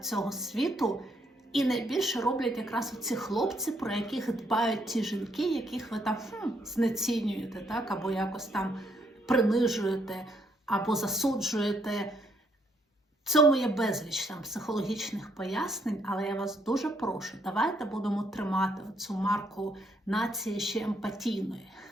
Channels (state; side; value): normal; both; correlation 0.73